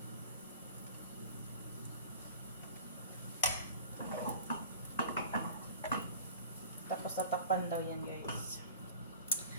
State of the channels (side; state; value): both; inverted; correlation -0.42